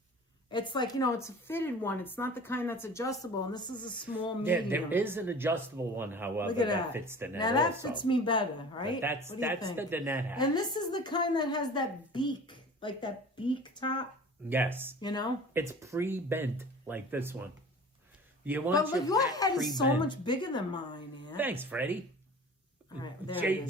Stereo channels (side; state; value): both; normal; correlation 0.41